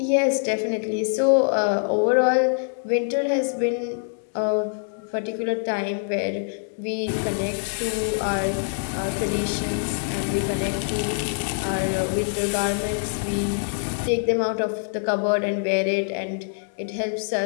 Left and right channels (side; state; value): right; silent; digital silence